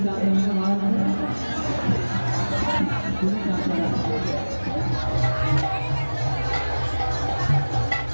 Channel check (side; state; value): both; inverted; correlation -1.00